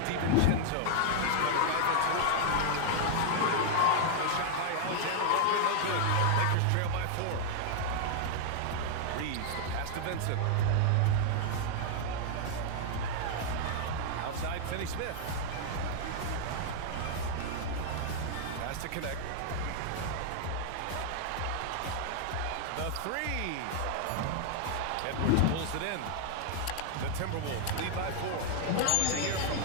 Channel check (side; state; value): both; different; correlation -0.01